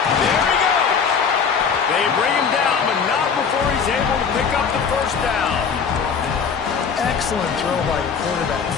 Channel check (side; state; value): right; quieter; 6.3 dB